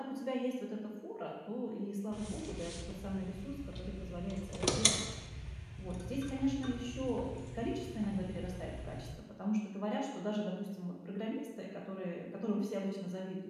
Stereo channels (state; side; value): identical; both; correlation 1.00